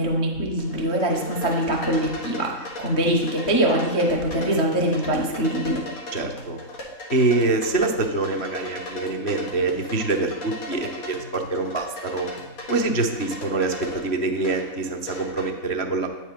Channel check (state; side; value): late; right; 3.6 ms